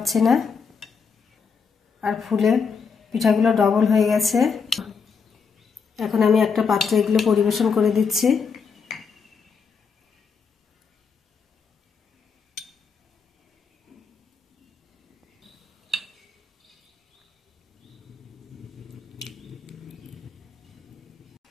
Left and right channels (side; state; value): right; quieter; 5.6 dB